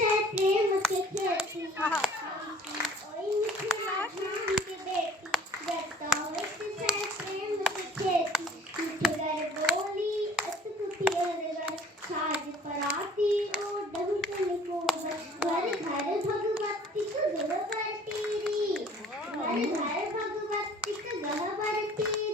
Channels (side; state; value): both; normal; correlation 0.51